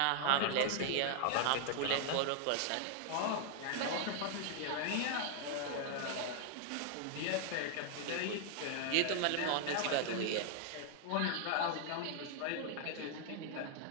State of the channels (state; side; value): different; both; correlation 0.00